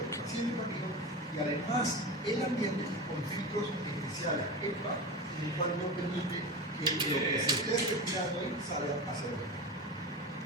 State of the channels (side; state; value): both; normal; correlation 0.26